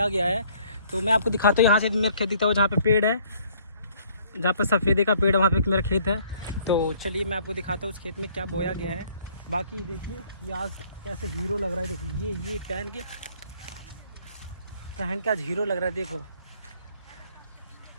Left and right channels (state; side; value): inverted; both; correlation -0.61